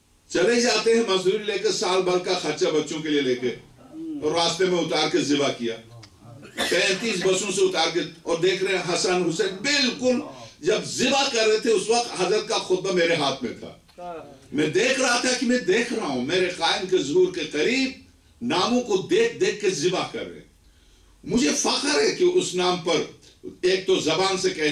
چلے جاتے ہیں، مزدوری لے کے سال بھر کا خرچہ بچوں کے لیے لے کے، اور راستے میں اتار کے ذبح کیا 35 بسوں سے اتار کے، اور دیکھ رہے ہیں حسن، حسین، بالکل جب ذبح کر رہے تھے اس وقت حضرت کا خطبہ میرے ہاتھ میں تھا، میں دیکھ رہا تھا کہ میں دیکھ رہا ہوں میرے قائم کے ظہور کے قریب ناموں کو دیکھ کے ذبح کر رہے ہیں۔ مجھے فخر ہے کہ اس نام پر ایک تو زبان سے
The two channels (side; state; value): both; identical; correlation 1.00